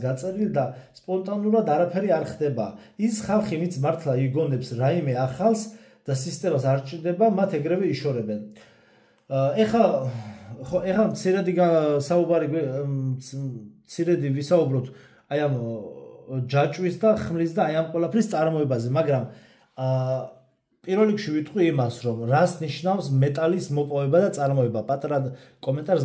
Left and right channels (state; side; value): identical; both; correlation 1.00